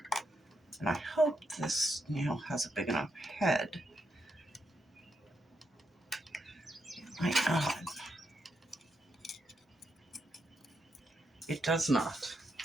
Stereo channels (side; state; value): both; normal; correlation 0.81